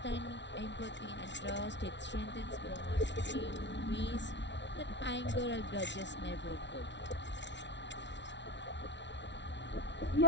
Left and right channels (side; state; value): right; late; 0.51 ms